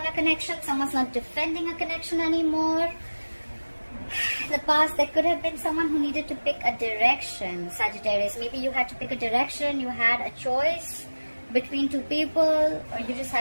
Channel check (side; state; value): both; inverted; correlation -1.00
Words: a connection. Someone's not defending a connection anymore. In the past, there could have been someone who needed to pick a direction, Sagittarius. Maybe you had to pick a direction. You had a choice between two people, or you just